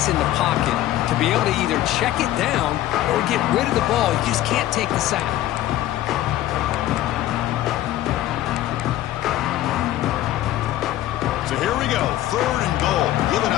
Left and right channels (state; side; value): quieter; right; 14.1 dB